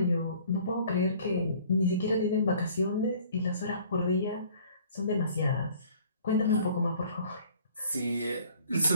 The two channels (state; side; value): inverted; both; correlation -0.54